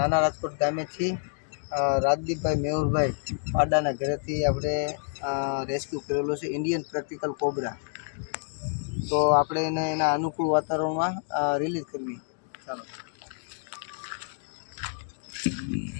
રાજકોટ ગામેથી રાજદીપભાઈ મેહુરભાઈ પાડાના ઘરેથી આપણે રેસ્ક્યુ કરેલો છે ઇન્ડિયન પ્રેક્ટિકલ કોબરા. તો આપણે એને એના અનુકૂળ વાતાવરણમાં રિલીઝ કરવી. ચાલો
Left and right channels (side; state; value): right; silent; digital silence